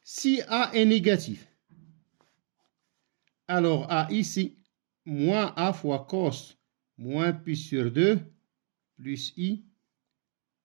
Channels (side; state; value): left; silent; 58 dB below the other